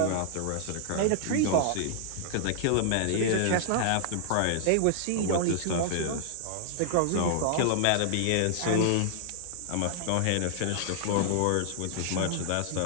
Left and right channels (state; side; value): different; both; correlation -0.01